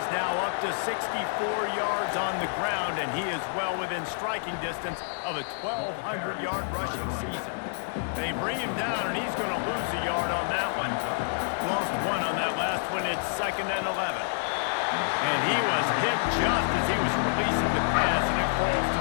now up to 64 yards on the ground, and he is well within striking distance of a 1,200-yard rushing season. They bring him down, and he's going to lose a yard on that one. Lost 1 on that last one. It's 2nd and 11. And he was hit just as he was releasing the pass, and it falls to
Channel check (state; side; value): silent; right; digital silence